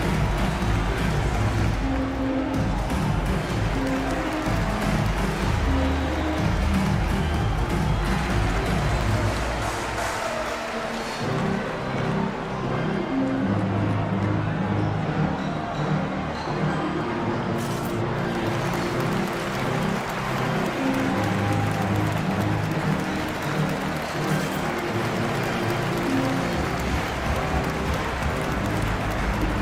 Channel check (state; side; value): identical; both; correlation 1.00